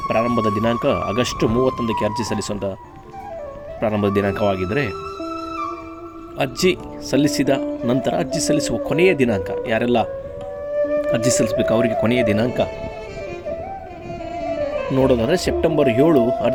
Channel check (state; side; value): identical; both; correlation 1.00